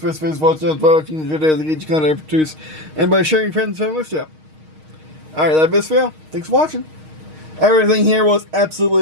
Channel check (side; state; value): left; late; 6.4 ms